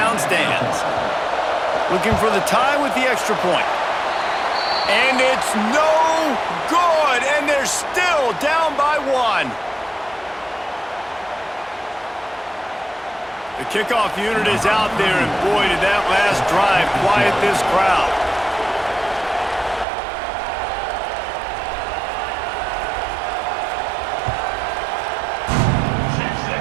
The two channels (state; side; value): drops out; left; at 19.9 s